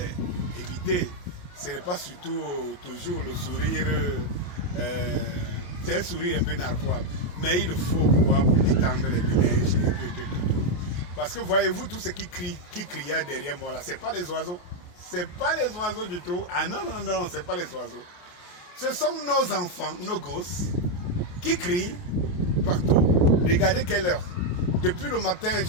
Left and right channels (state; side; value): late; right; 28 ms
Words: évitez. Ce n'est pas surtout toujours le sourire. C'est un sourire un peu narquois. Mais il le faut pour détendre les ménages et tout. Parce que voyez-vous, tout ce qui criait derrière moi là, ce n'est pas les oiseaux. Ce n'est pas les oiseaux du tout. Ah non, ce n'est pas les oiseaux. Ce sont nos enfants, nos gosses, qui crient partout. Regardez quelle heure. Depuis le matin,